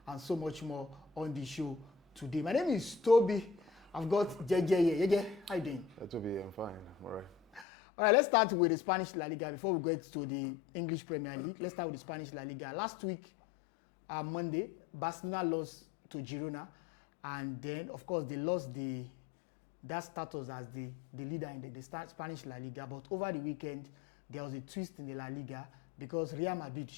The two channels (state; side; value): drops out; right; at 7.7 s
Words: and so much more on the show today. My name is Toby. I've got JJ here. JJ, how you doing? Toby, I'm fine. I'm all right. All right, let's start with the Spanish La Liga before we get to the English Premier League. Let's start with the Spanish La Liga. Last week, Monday, Barcelona lost to Girona, and then, of course, they lost that status as the leader in the Spanish La Liga. But over the weekend, there was a twist in the La Liga because Real Madrid